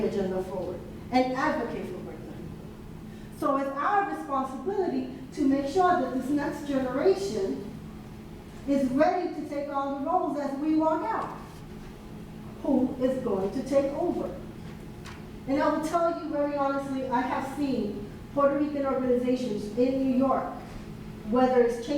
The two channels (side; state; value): both; identical; correlation 1.00